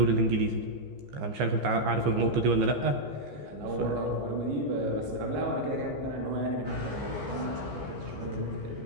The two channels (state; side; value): late; left; 15 ms